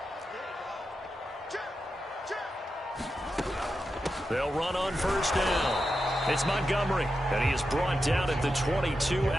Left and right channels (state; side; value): normal; both; correlation 0.89